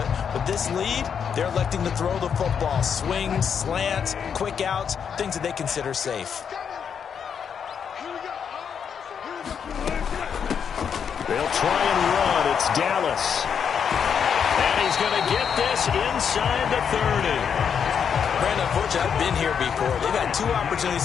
with this lead, they're electing to throw the football. Swings, slants, quick outs, things that they consider safe. They'll try and run. It's Dallas. And he's going to get this inside the 30. Brandon, unfortunately, I've been here before. They've had 2 opportunities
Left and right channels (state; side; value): quieter; right; 7.3 dB